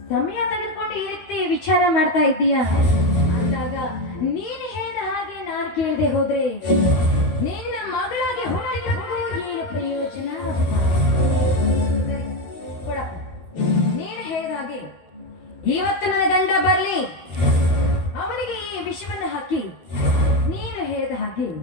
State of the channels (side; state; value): right; late; 12 ms